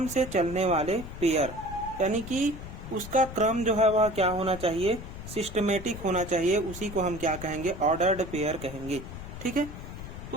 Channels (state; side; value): noise; left; rumble, 11 dB below the sound